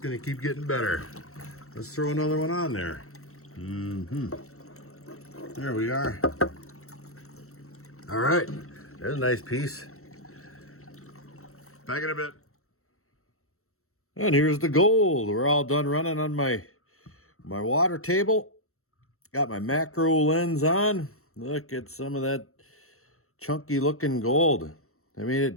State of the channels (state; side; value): late; right; 0.63 ms